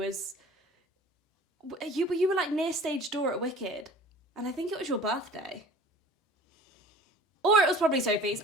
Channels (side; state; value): both; normal; correlation 0.45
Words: you were like near stage door at Wicked, and I think it was your birthday. Or it was probably Sophie's.